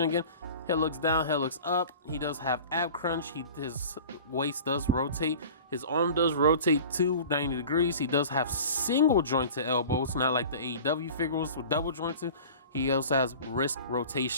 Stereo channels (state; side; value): inverted; both; correlation -0.41